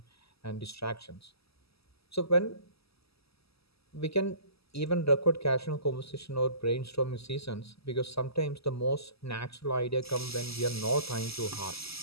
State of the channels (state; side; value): late; right; 0.77 ms